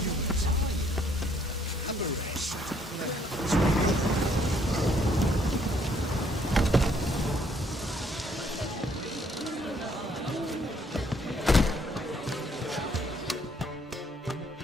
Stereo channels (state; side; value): normal; both; correlation 0.66